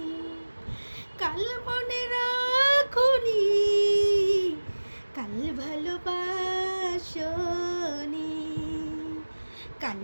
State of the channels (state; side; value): inverted; both; correlation -1.00